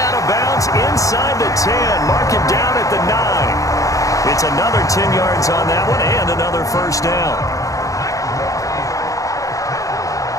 of bounds inside the 10. Mark him down at the 9. It's another 10 yards on that one and another first down.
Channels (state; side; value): late; right; 0.16 ms